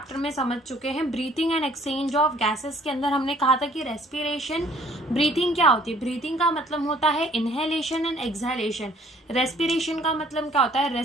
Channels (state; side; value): normal; both; correlation 0.58